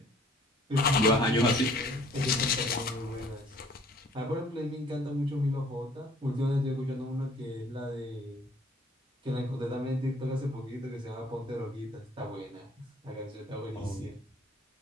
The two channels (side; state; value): both; normal; correlation 0.56